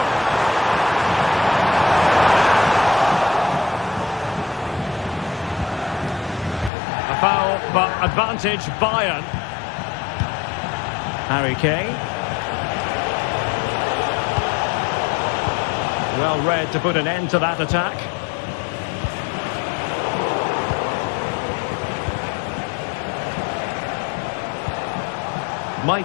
A foul, but advantage Bayern. Harry Kane. Well read to put an end to that attack.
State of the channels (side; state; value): right; drops out; at 6.7 s